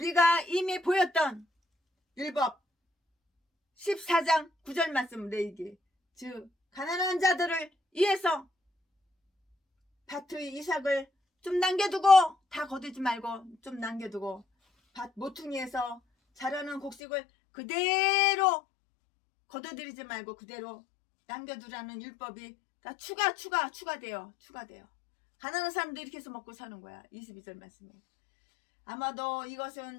이미 보였던 율법 14장 9절 말씀 레위기 즉 가난한 자들을 위해서 밭의 이삭을 좀 남겨두고 다 거두지 말고 좀 남겨두고 밭 모퉁이에서 자라는 곡식을 그대로 거둬들이지 말고 그대로 남겨두라는 율법이 다 추가돼요. 가난한 사람도 이렇게 해서 먹고 사는 거야. 22절 말씀에. 아마도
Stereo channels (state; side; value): drops out; right; at 16.9 s